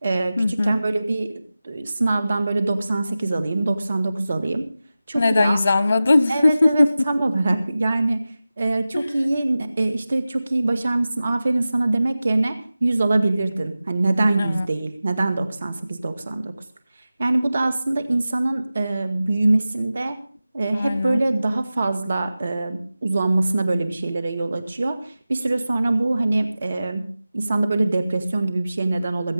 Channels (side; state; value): both; inverted; correlation -0.95